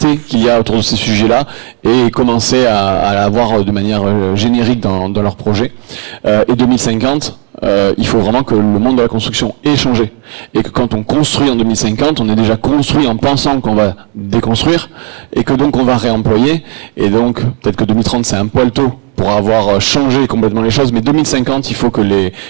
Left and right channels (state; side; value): quieter; left; 37.7 dB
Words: qu'il y a autour de ces sujets-là, et commencer à l'avoir de manière générique dans leur projet. Et 2050, il faut vraiment que le monde de la construction ait changé. Et que quand on construit en 2050, on est déjà construit en pensant qu'on va déconstruire, et que donc on va réemployer. Et donc, peut-être que 2030, c'est un poil tôt pour avoir changé complètement les choses, mais 2050, il faut que les